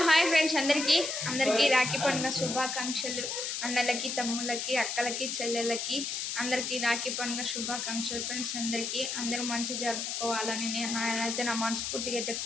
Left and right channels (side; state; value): left; noise; hiss, 3 dB below the sound